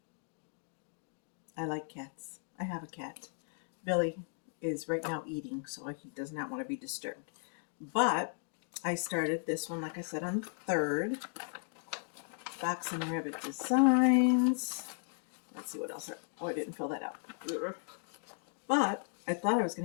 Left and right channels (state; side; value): silent; right; 54 dB below the other